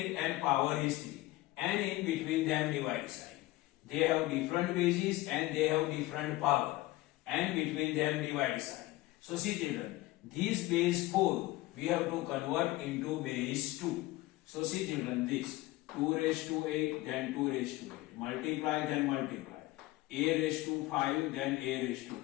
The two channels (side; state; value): right; quieter; 18.5 dB